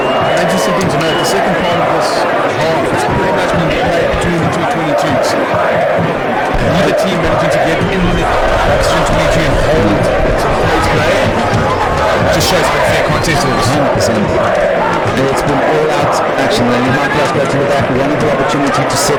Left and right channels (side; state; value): both; identical; correlation 1.00